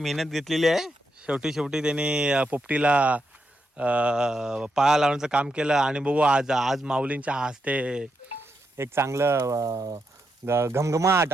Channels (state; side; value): normal; both; correlation 0.83